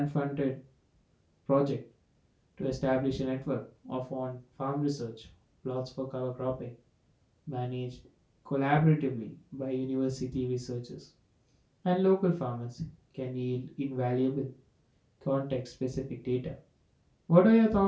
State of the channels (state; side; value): identical; both; correlation 1.00